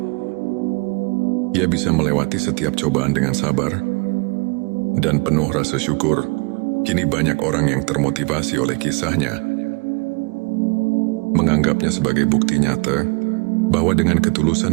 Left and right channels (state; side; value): quieter; left; 30.0 dB